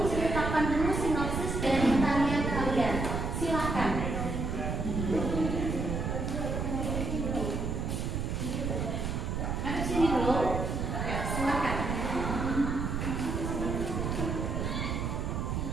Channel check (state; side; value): noise; right; rumble, 1 dB below the sound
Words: dulu sinopsis dari tarian kalian. Silakan. Ada sini dulu. Silakan.